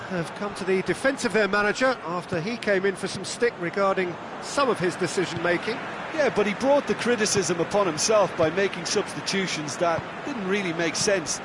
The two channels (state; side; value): identical; both; correlation 1.00